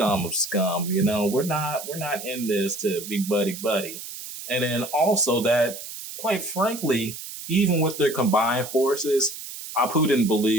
of scum. We're not in this to be buddy. And then also that, quite frankly, even with their combined forces, Apu didn't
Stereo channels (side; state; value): right; noise; hiss, 11 dB below the sound